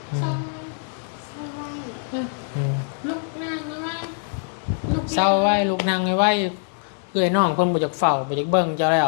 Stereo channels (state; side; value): silent; right; 58 dB below the other